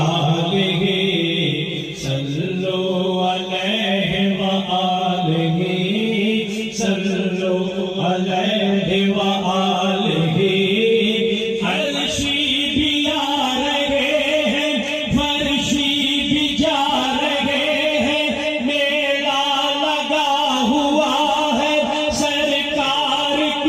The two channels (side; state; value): both; identical; correlation 1.00